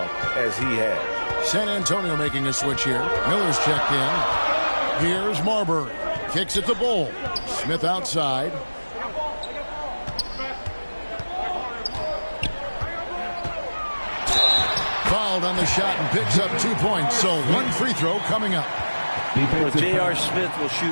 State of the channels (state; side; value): inverted; both; correlation -1.00